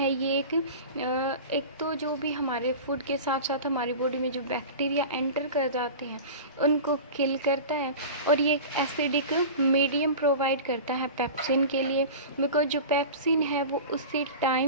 ये एक तो जो भी हमारे फूड के साथ साथ हमारी बॉडी में जो बैक्टीरिया एंटर कर जाते हैं उनको किल करता है, और ये एक एसिडिक मीडियम प्रोवाइड करता है पेप्सिन के लिए. बिकॉज जो पेप्सिन है वो उसी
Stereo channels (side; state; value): both; inverted; correlation -0.33